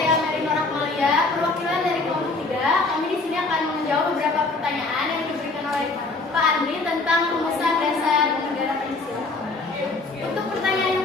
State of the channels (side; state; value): right; quieter; 3.5 dB